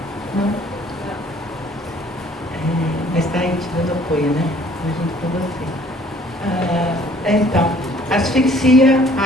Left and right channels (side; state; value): both; normal; correlation 0.57